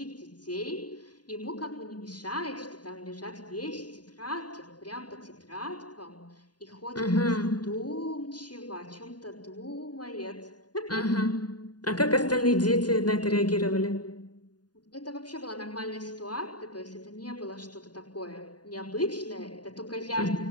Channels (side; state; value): right; late; 0.70 ms